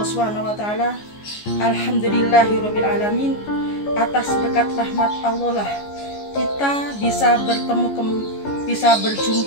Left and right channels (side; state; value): right; late; 14 ms